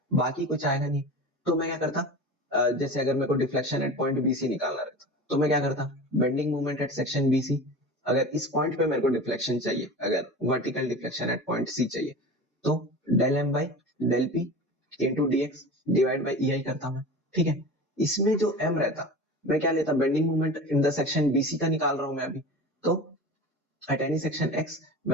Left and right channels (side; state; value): both; normal; correlation 0.33